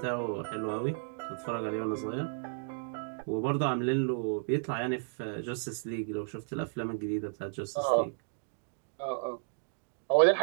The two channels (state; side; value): silent; left; digital silence